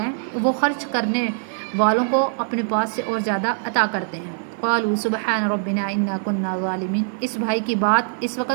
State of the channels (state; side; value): silent; left; digital silence